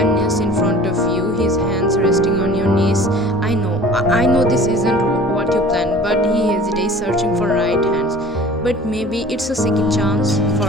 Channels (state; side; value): normal; both; correlation 0.45